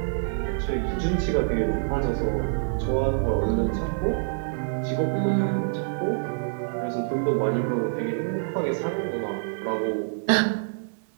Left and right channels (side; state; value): left; silent; digital silence